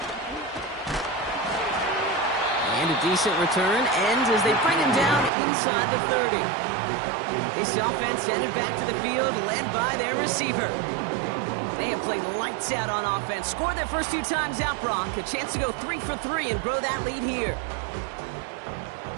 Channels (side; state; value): left; drops out; at 5.3 s